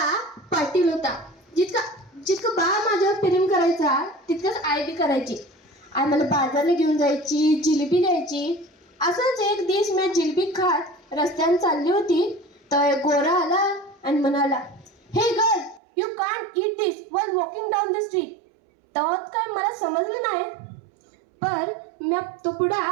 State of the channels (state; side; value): drops out; left; at 15.8 s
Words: पाटील होता. जितकं बा माझ्यावर प्रेम करायचा तितकंच आई बी करायची. आई मला बाजारला घेऊन जायची, जिलेबी द्यायची. असंच एक दिवस मी जिलेबी खात रस्त्याने चालली होती तर एक गोरा आला आणि म्हणाला, हे girl, you can't eat this while walking down the street. तेव्हा काय मला समजलं नाही, पण मी तो पुडा